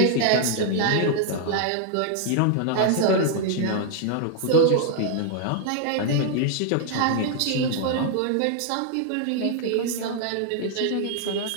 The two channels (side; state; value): both; different; correlation 0.00